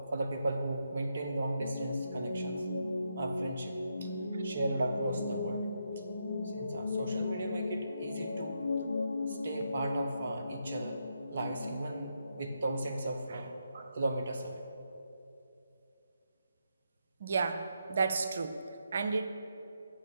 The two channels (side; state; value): both; inverted; correlation -0.82